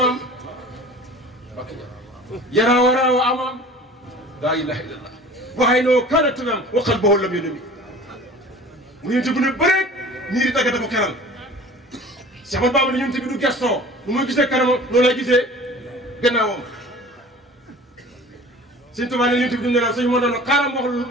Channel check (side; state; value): both; normal; correlation 0.43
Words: yaraa waraa wa amaam laa ilaha illallah waxay noo kaana tanam wa qalbuhu lam yanami mu yonent bu ne bëreet niir yi tàggate ko keral Cheikh Ahmadou Bamba ne yonent bi du gestoo nu muy gisee kanamam noonu lay gisee gannaawam Sëñ Tuubaa ne yonent bi du nelaw sëñ moo doon xaaral